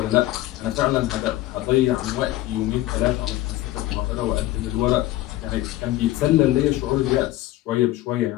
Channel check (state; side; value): quieter; right; 16.1 dB